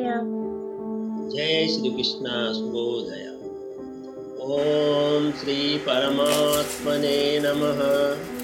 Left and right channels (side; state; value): both; identical; correlation 1.00